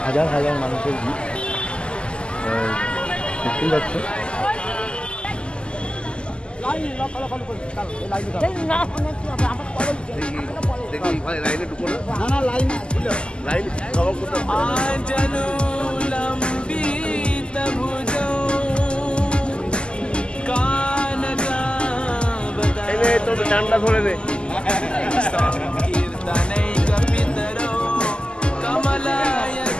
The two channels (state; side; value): late; right; 0.051 ms